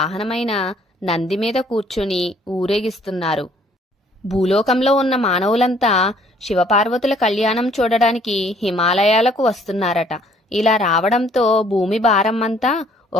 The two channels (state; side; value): normal; both; correlation 0.61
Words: నంది మీద కూర్చుని ఊరేగిస్తున్నారు. భూలోకంలో ఉన్న మానవులంతా శివపార్వతుల కళ్యాణం చూడడానికి హిమాలయాలకు వస్తున్నారట. ఇలా రావడంతో భూమి భారం అంతా